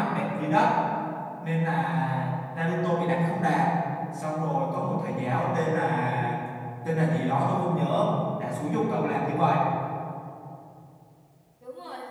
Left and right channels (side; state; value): both; identical; correlation 1.00